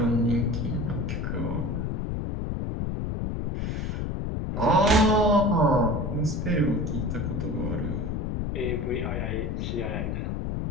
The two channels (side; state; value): left; noise; rumble, 1 dB below the sound